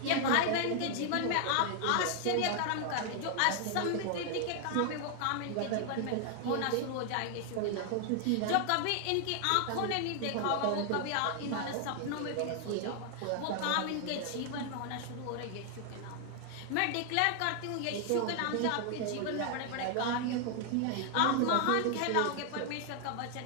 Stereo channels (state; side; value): different; both; correlation 0.00